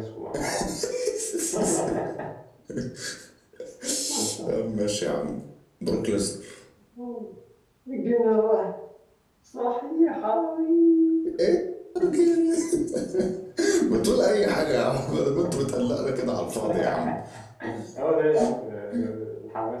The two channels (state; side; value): identical; both; correlation 1.00